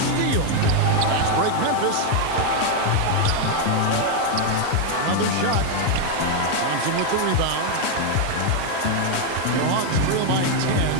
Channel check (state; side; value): different; both; correlation 0.01